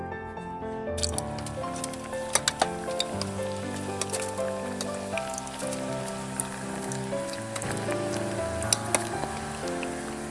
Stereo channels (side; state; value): both; identical; correlation 1.00